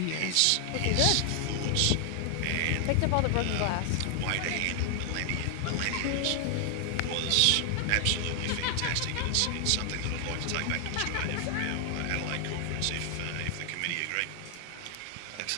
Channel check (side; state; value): both; different; correlation 0.00